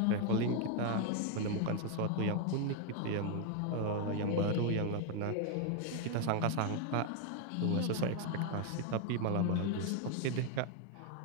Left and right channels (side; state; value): both; different; correlation 0.01